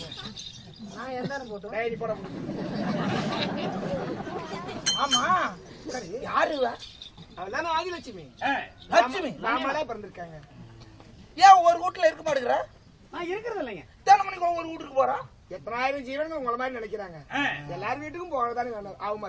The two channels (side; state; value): both; identical; correlation 1.00